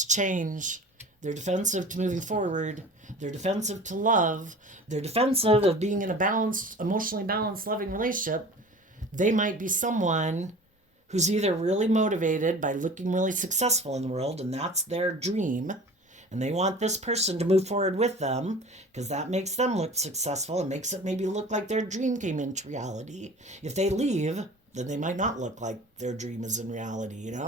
change. They're defensive to moving forward. They're defensive to love. They're defensive of being in a balanced, emotionally balanced, loving relationship. They might be someone who's either really motivated by looking really successful in the world, and that's their dream, and they want this person to move forward with them because that makes them look successful and makes it maybe look like their dream came into reality. If they leave, then they might not look like their dream is in reality,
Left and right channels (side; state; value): both; normal; correlation 0.40